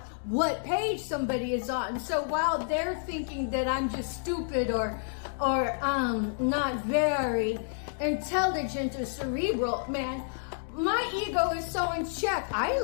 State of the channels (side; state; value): right; silent; digital silence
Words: what page somebody is on. So while they're thinking that I'm just stupid or not very intelligent or cerebral, man, my ego is so in check. I